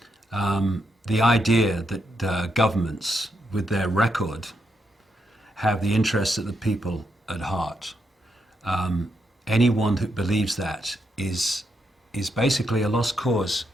The idea that governments, with their record, have the interests of the people at heart. Anyone who believes that is basically a lost cause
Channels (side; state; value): both; normal; correlation 0.81